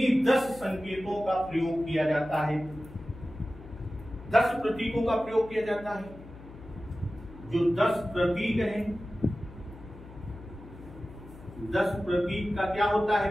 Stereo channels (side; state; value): left; noise; hum, 18 dB below the sound